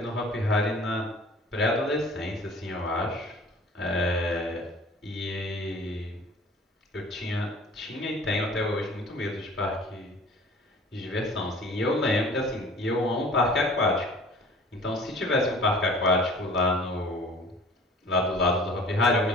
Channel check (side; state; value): both; normal; correlation 0.47